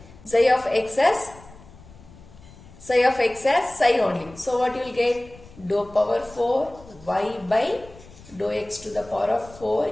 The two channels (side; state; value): left; noise; rumble, 21 dB below the sound